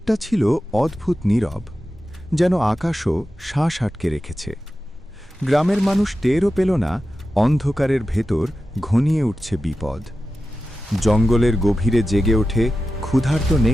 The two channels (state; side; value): normal; both; correlation 0.92